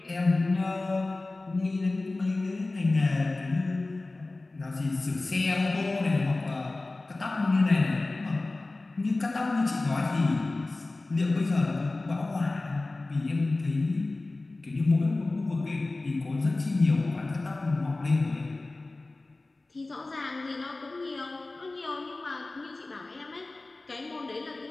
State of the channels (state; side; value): quieter; right; 3.1 dB